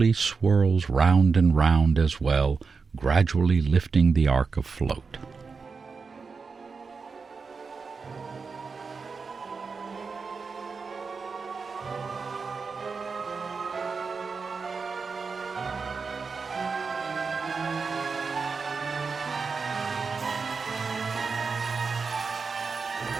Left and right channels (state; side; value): quieter; left; 4.9 dB